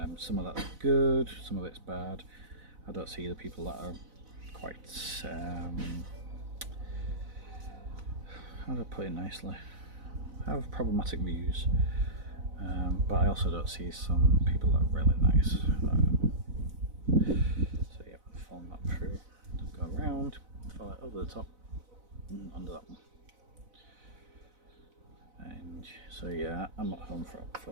Some of that's good, some of it's bad. I don't see the people that are quite, how do I put it nicely, have problematic views. But I also don't see some people that are really nice. So yeah, fold that through, go around, follow it over the top, and under that one. And so yeah, I'm at home for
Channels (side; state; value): left; late; 4.0 ms